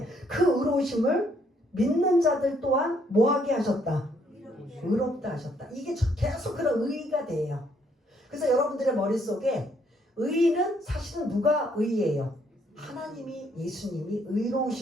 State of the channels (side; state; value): both; normal; correlation 0.69